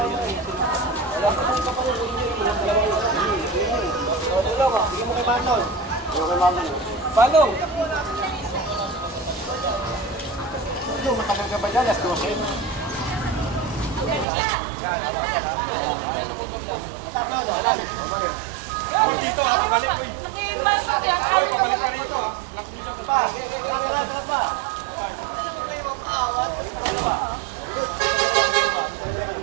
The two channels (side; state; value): left; drops out; at 14.2 s